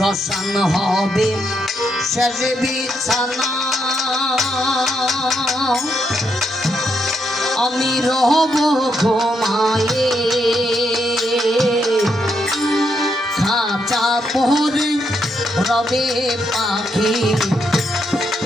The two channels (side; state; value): both; normal; correlation 0.79